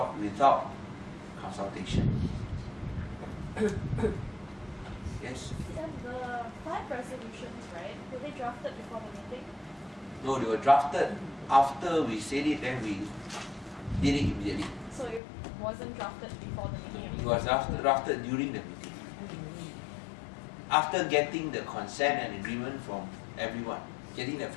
without consultation. Yes? And the 5 resolutions, right, were they drafted before the meeting? No, they were drafted after we said it, then we did it immediately. So it wasn't drafted before the meeting? It was drafted during the meeting. After getting the consent and agreement from everyone, getting the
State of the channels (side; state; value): right; drops out; at 15.2 s